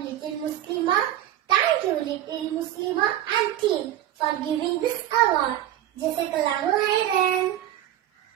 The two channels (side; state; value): left; quieter; 12.5 dB